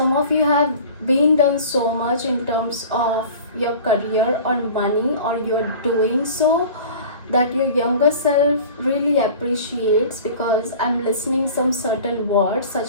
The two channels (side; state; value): both; inverted; correlation -0.41